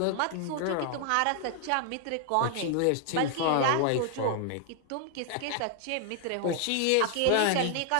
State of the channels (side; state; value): both; different; correlation 0.00